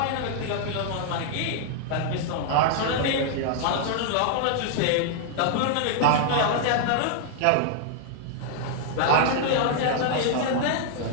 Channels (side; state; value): both; different; correlation 0.00